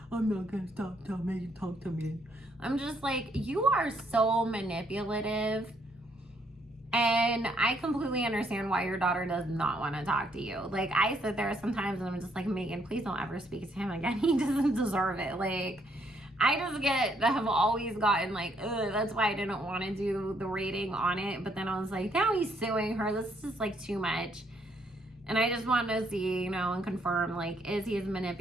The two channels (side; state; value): both; normal; correlation 0.70